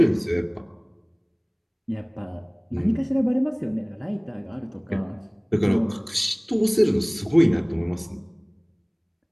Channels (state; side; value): identical; both; correlation 1.00